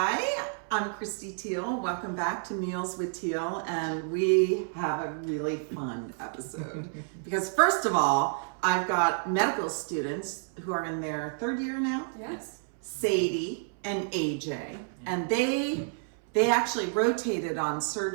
I'm Christy Teal. Welcome back to Meals with Teal, and we have a really fun episode. Because first of all, I've got medical students who are in their third year now. Yes. Sadie and AJ, and they actually rotated on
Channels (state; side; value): silent; left; 58 dB below the other